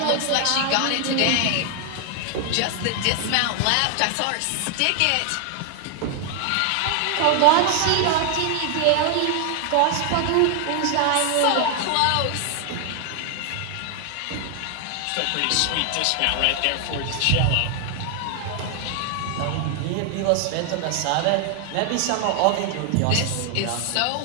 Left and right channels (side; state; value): both; different; correlation 0.00